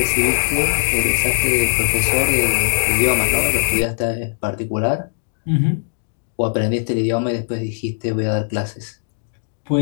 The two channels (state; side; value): silent; right; digital silence